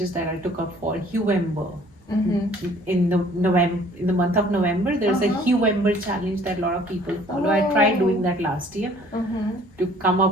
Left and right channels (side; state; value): both; normal; correlation 0.55